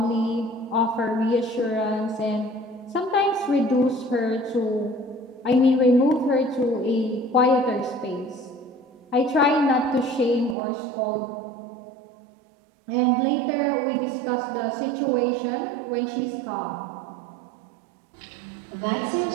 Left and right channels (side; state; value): left; drops out; at 10.6 s